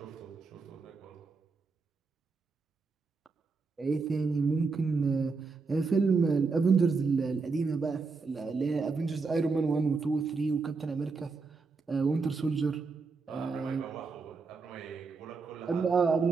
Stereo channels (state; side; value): quieter; left; 4.4 dB